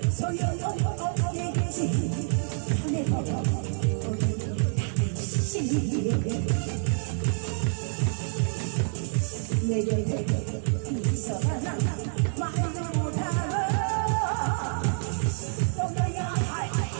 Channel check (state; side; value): silent; left; 58 dB below the other